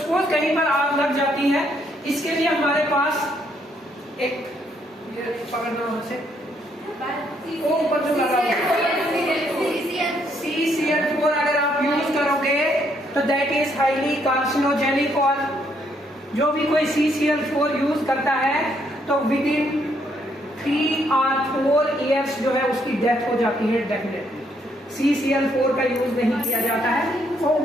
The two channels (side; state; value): both; normal; correlation 0.72